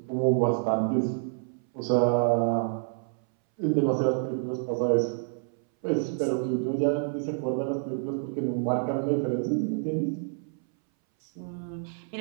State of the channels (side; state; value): left; silent; 59 dB below the other